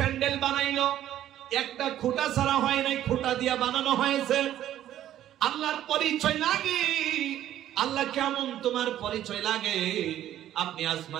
বানাইলো একটা খুঁটা ছাড়া হয় নাই, খুঁটা দিয়া বানানো হয়েছে। আল্লাহর পরিচয় লাগে, আল্লাহ কেমন তোমার পরিচয় লাগে। আপনি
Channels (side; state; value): left; quieter; 12.1 dB